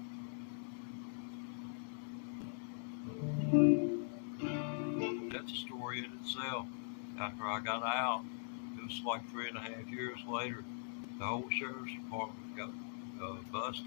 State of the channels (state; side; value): silent; right; digital silence